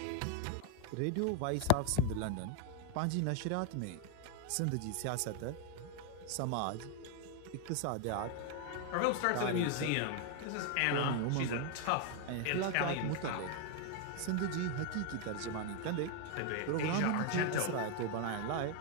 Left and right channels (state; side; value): different; both; correlation 0.01